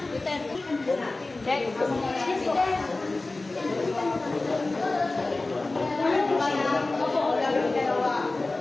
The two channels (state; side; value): quieter; right; 3.2 dB